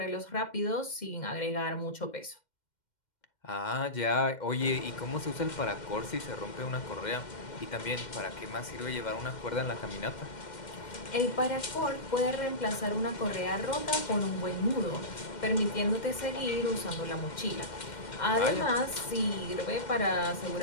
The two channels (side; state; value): right; late; 2.1 ms